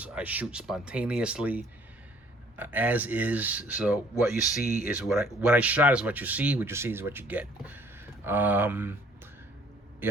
I shoot spontaneously, as is. So what you see is what I shot is what you see. What you see is what you get. Yeah,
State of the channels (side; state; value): both; normal; correlation 0.58